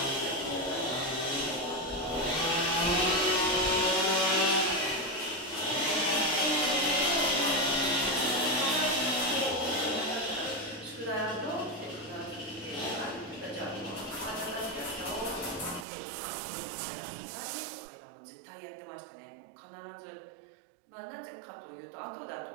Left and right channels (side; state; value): left; drops out; at 15.9 s